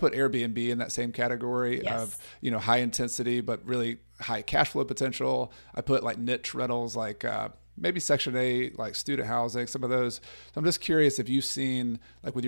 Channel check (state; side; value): inverted; both; correlation -1.00